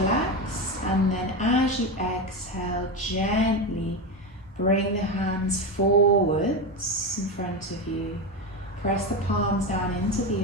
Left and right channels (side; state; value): both; normal; correlation 0.16